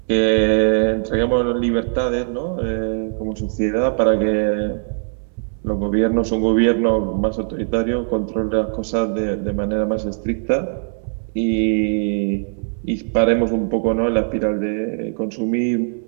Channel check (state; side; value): silent; left; 66 dB below the other